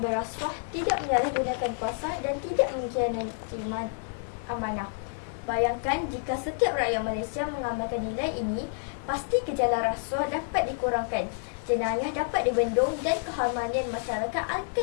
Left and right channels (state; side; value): silent; right; 59 dB below the other